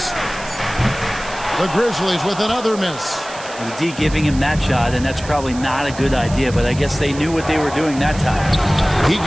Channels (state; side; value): noise; right; hiss, 15 dB below the sound